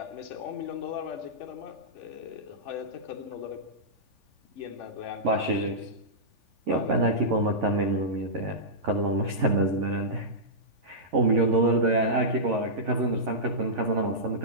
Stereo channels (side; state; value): left; late; 3.4 ms